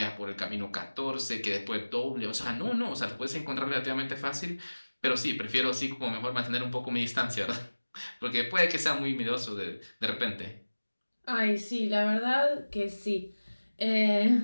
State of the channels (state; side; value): inverted; both; correlation -1.00